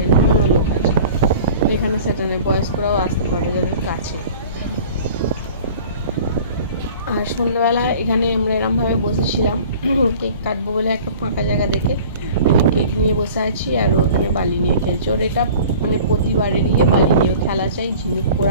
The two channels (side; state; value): both; inverted; correlation -0.44